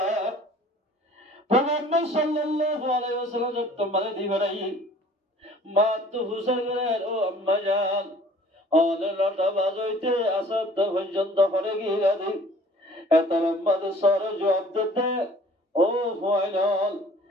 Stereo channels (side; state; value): both; normal; correlation 0.51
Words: পয়গম্বর সাল্লাল্লাহু আলাইহি ওয়াসাল্লাম তোমারে দিবেরাইয়া মা তো হুসাইনের ও আম্মা জান অনে লটা বাজইতে আসাদ পর্যন্ত হরে গিয়ে দি এত লম্বা সরে জবাব দিতে ও ফাইনাল